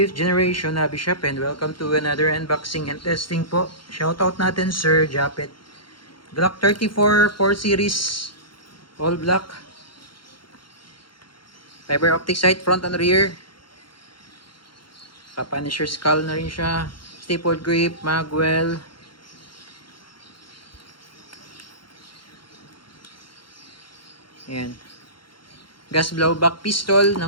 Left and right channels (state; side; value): late; right; 0.73 ms